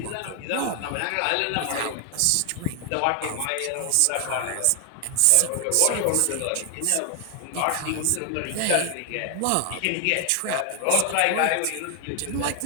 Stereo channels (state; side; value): different; both; correlation 0.00